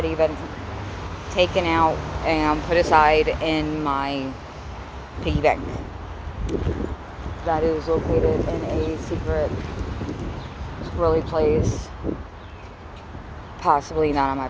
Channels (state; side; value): identical; both; correlation 1.00